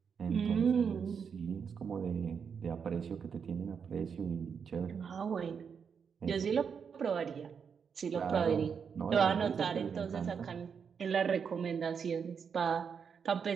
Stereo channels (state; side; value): quieter; left; 6.6 dB